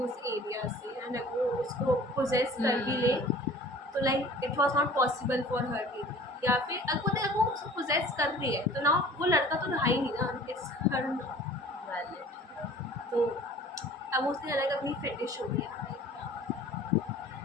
उस एरिया से एंड अगर वो उसको पोजेस कर भी ले तो like it was not possible for her to, या फिर अगर वो उसको पोजेस कर रही है तो ना वो लड़का तो रहा ही नहीं ना, इट्स हर वैलिड। तो अब उसने अलग अपनी फेटिश हो गया।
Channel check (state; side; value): normal; both; correlation 0.47